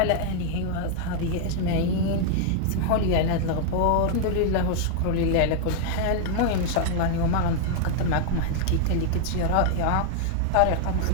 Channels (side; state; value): both; different; correlation -0.01